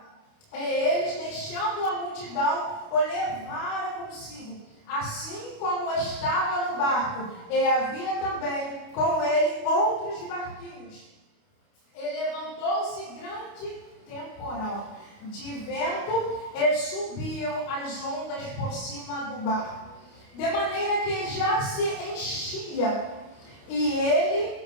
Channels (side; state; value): right; late; 29 ms